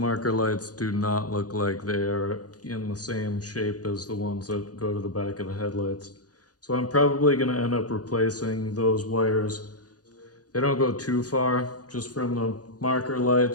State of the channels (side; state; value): right; late; 0.68 ms